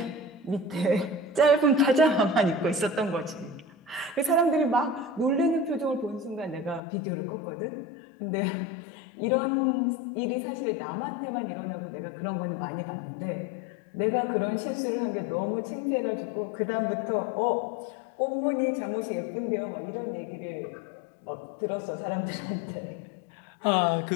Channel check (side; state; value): right; drops out; at 6.8 s